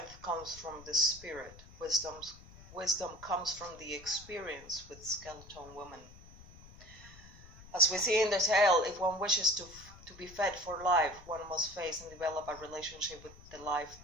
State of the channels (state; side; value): noise; left; rumble, 19 dB below the sound